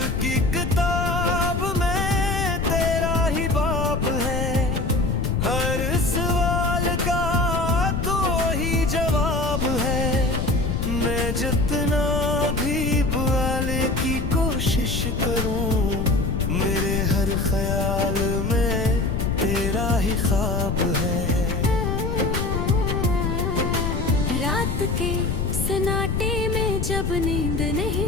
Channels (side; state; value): left; noise; rumble, 1 dB below the sound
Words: की किताब में तेरा ही बाब है, हर सवाल का तो ही जवाब है। मैं जितना भी बुआले की कोशिश करूं, मेरे हर ख्याल में तेरा ही ख्वाब है। रात के सन्नाटे में जब नींद